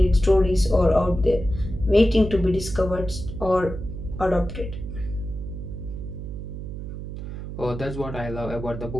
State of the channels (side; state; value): right; noise; hum, 8 dB below the sound